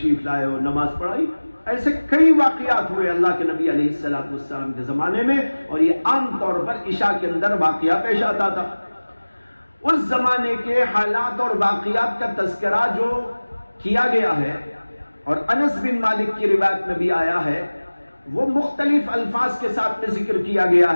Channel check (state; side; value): inverted; both; correlation -1.00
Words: لائے اور نماز پڑھائی۔ ایسے کئی واقعات ہوئے اللہ کے نبی علیہ السلام کے زمانے میں، اور یہ عام طور پر عشاء کے اندر واقعہ پیش آتا تھا۔ اس زمانے کے حالات اور واقعات کا تذکرہ جو کیا گیا ہے، اور انس بن مالک کی روایت میں بھی آیا ہے، وہ مختلف الفاظ کے ساتھ میں ذکر کیا گیا